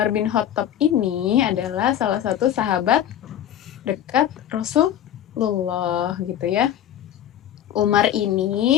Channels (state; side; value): quieter; right; 10.8 dB